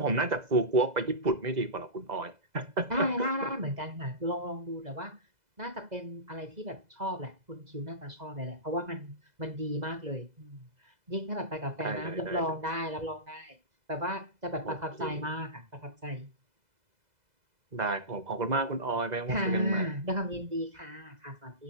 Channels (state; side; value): late; left; 2.0 ms